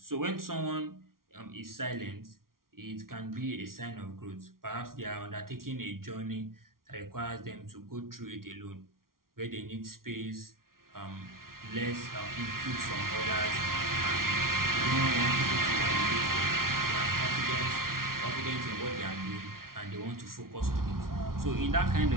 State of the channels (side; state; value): left; late; 0.93 ms